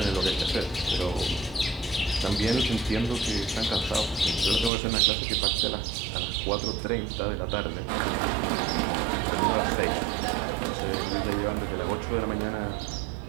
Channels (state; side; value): drops out; left; at 4.7 s